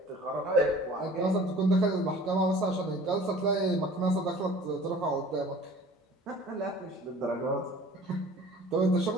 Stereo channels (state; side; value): normal; both; correlation 0.47